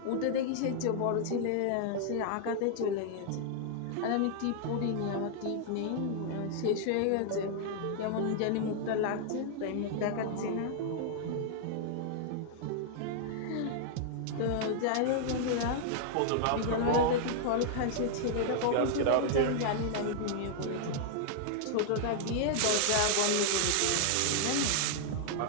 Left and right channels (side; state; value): both; different; correlation -0.01